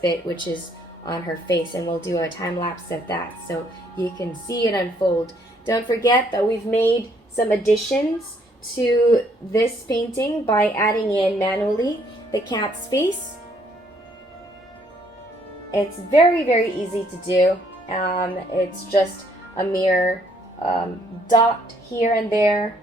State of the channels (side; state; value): both; normal; correlation 0.67